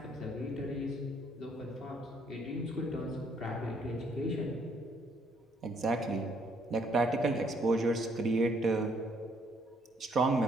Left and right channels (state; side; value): normal; both; correlation 0.68